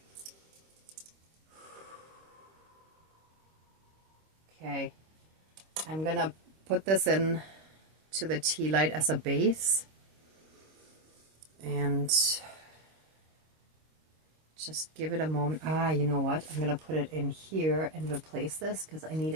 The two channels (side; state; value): left; late; 25 ms